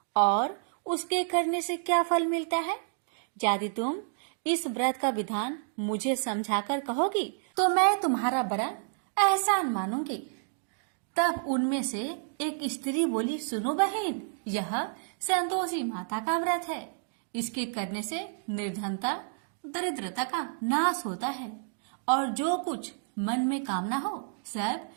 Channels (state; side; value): silent; left; digital silence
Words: और उसके करने से क्या फल मिलता है? यदि तुम इस व्रत का विधान मुझे समझाकर कहोगी तो मैं तुम्हारा बड़ा एहसान मानूंगी। तब उनमें से एक स्त्री बोली, सुनो बहन, यह संतोषी माता का व्रत है। इसके करने से निर्धनता, दरिद्रता का नाश होता है और जो कुछ मन में कामना हो सब